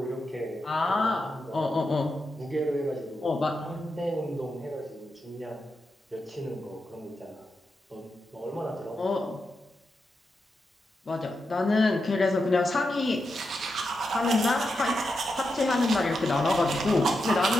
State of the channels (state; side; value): normal; both; correlation 0.87